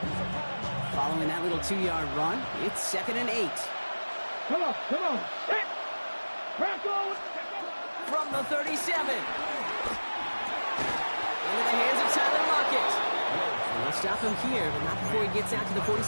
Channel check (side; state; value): both; inverted; correlation -1.00